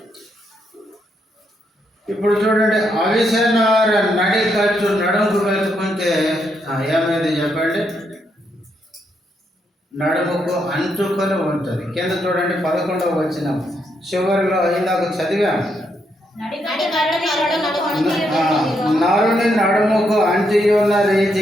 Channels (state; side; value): normal; both; correlation 0.78